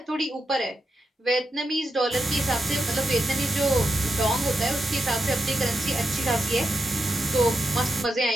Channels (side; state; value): both; normal; correlation 0.86